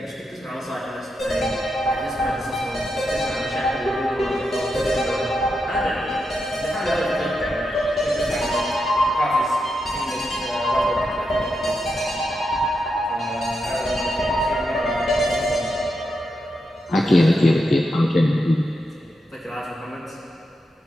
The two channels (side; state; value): both; normal; correlation 0.85